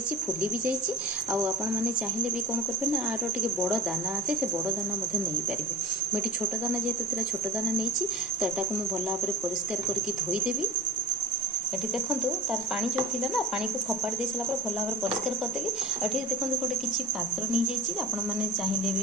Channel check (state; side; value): normal; both; correlation 0.41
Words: फुली भी जाइए आपण मैंने चाहिए भी कौन करेंगे ना आर टे बड़ दाना आसे से बड़ दाना नहीं पारे मुझे छोट दाना जेहेतु छोट दाना नहीं तो यहाँ को मुझे भल भाव परिष्कार करके धोईदेवी ये देखो तार पानी जो थी ना पानी को खपाड़ी दे सारा भल भाव परिष्कार करदेली ये देखो गोटे किसी पात्र नहीं जाइए आपण मैंने चाहिए